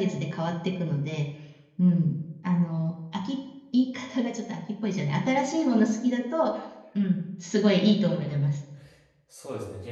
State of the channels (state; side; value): identical; both; correlation 1.00